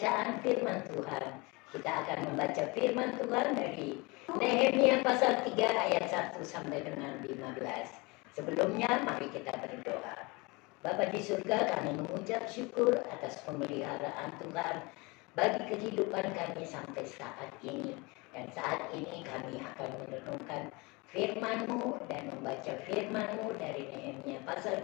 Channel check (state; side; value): quieter; right; 26.0 dB